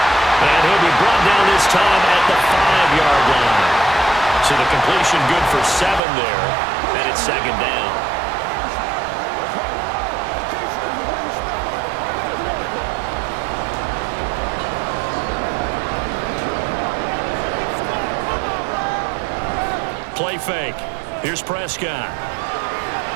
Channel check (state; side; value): drops out; left; at 6.0 s